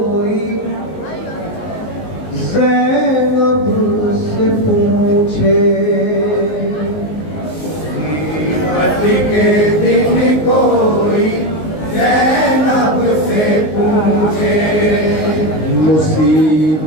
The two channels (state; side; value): late; right; 19 ms